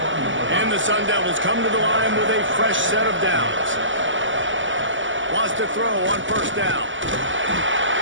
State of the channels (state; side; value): late; left; 0.55 ms